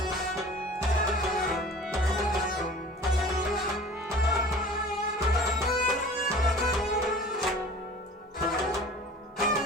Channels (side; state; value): both; normal; correlation 0.43